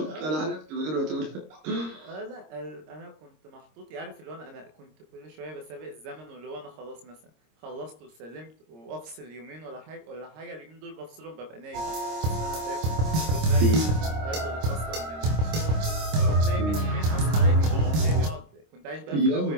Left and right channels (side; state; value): left; late; 26 ms